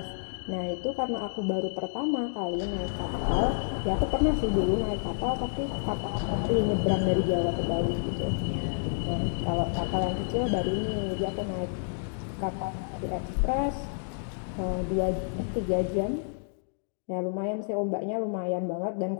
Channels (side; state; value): right; silent; digital silence